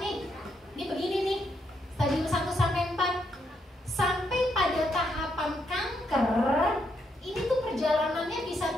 nih. Ini begini nih. Stadium 1 sampai 4. Sampai pada tahapan kanker, ini tuh perjalanannya bisa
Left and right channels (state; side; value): normal; both; correlation 0.77